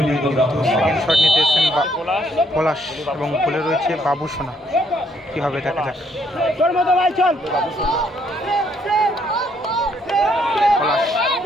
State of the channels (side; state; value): both; normal; correlation 0.70